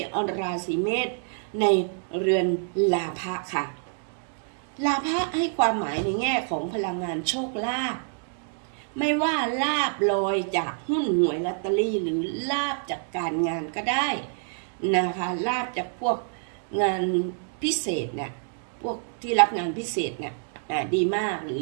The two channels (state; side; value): silent; left; 60 dB below the other